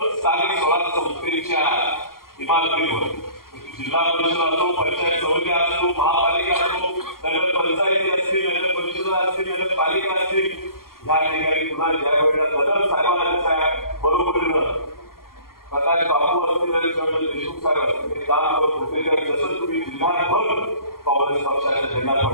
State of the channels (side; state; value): right; late; 0.92 ms